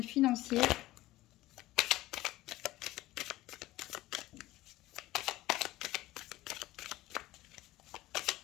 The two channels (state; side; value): quieter; right; 17.1 dB